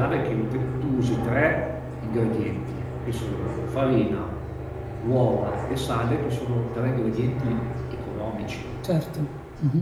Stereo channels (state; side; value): identical; both; correlation 1.00